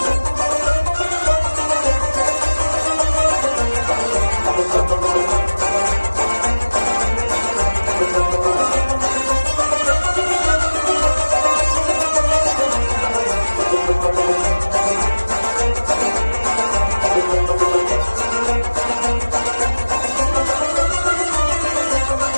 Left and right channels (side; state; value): both; inverted; correlation -1.00